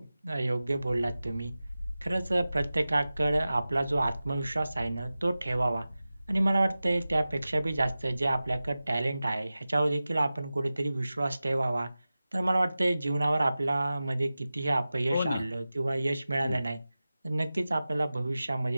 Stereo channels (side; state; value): both; inverted; correlation -0.95